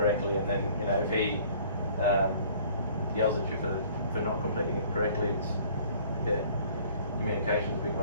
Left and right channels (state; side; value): inverted; both; correlation -0.54